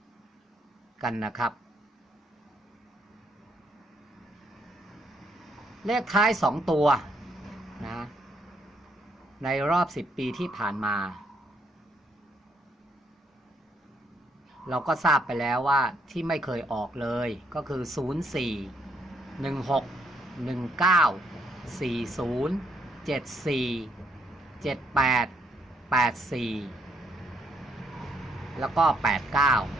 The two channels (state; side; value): normal; both; correlation 0.72